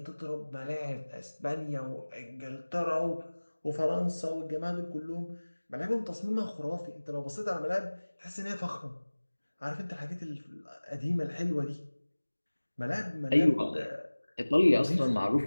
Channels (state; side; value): inverted; both; correlation -1.00